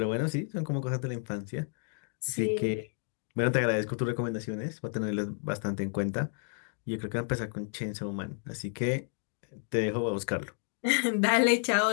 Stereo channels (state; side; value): silent; right; 57 dB below the other